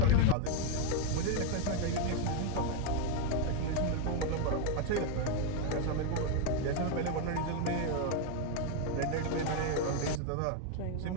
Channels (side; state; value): both; different; correlation 0.01